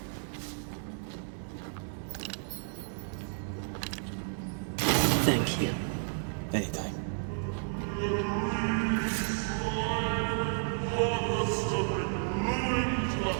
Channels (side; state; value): left; silent; 56 dB below the other